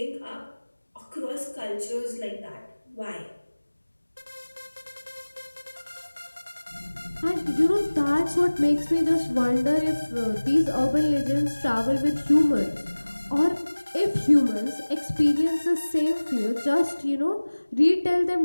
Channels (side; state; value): both; inverted; correlation -1.00